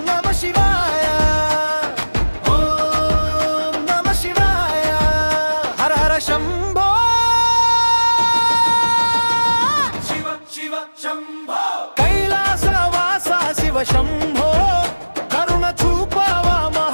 కైలాసవాస శివ శంభో కరుణ చూపవా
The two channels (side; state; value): both; inverted; correlation -1.00